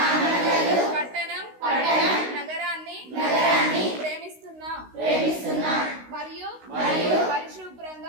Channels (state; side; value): late; left; 16 ms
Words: పట్టణం నగరాన్ని ప్రేమిస్తున్నా మరియు